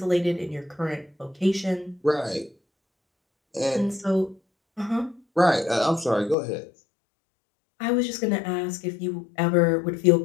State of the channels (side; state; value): right; drops out; at 6.4 s